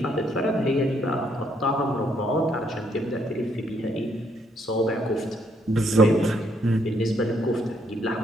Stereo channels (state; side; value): normal; both; correlation 0.72